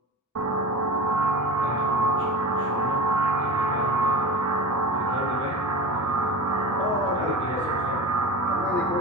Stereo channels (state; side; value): normal; both; correlation 0.30